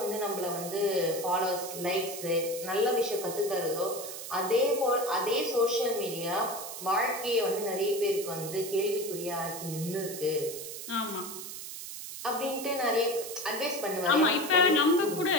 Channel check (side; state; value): right; noise; hiss, 9 dB below the sound